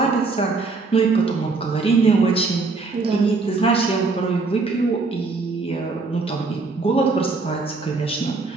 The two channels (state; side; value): quieter; left; 3.9 dB